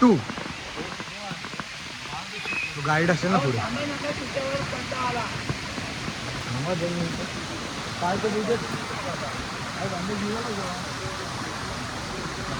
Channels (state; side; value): identical; both; correlation 1.00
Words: 2. गाईड असेल ना पुढे.